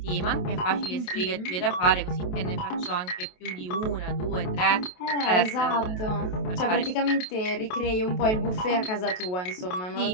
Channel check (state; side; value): late; right; 28 ms